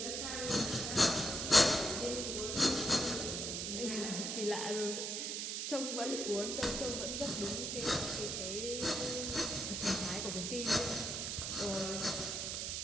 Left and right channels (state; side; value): noise; right; hiss, 2 dB below the sound